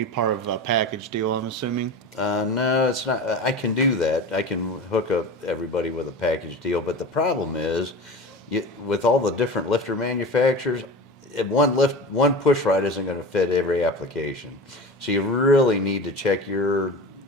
part of a package deal, I'm assuming. No, it's not. I can do that. I can hook up everybody with a package deal, but the problem is, with all the different lifter manufacturers, one push rod isn't going to fit every application. So you really need to check your,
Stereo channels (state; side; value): normal; both; correlation 0.31